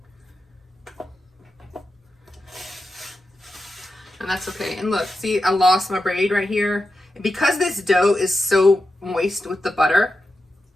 And that's okay. And look, see, I lost my braid right here. And because this dough is so moist with the butter,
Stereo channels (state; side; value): normal; both; correlation 0.89